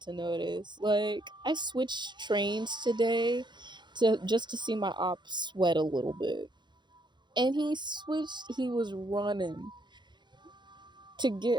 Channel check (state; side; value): late; left; 0.22 ms